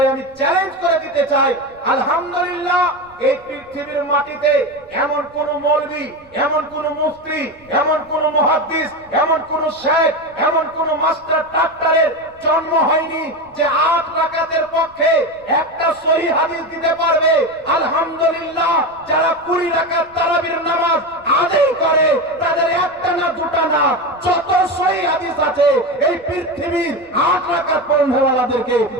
আমি চ্যালেঞ্জ করে দিতে চাই। আলহামদুলিল্লাহ, এই পৃথিবীর মাটিতে এমন কোন মৌলবী, এমন কোন মুফতি, এমন কোন মুহাদ্দিস, এমন কোন শেখ, এমন কোন মাস্টার ডাক্তারের জন্ম হয়নি যে 8 রাকাতের পক্ষে একটা সহিহ হাদিস দিতে পারবে। আলহামদুলিল্লাহ, যারা 20 রাকাত তারাবির নামাজ আদায় করে, তাদের একটা না দুটা না, যত সহিহ হাদিস আছে এই পৃথিবীর 8 রাকাত পড়নেওয়ালাদেরকে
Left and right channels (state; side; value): noise; right; rumble, 29 dB below the sound